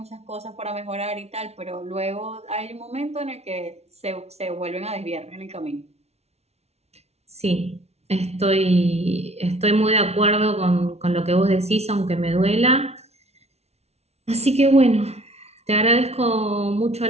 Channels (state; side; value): late; left; 0.31 ms